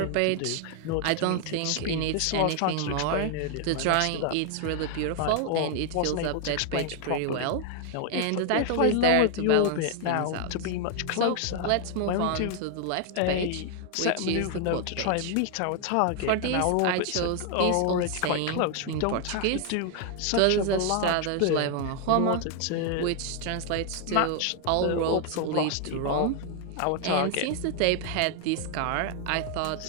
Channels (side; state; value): both; different; correlation 0.00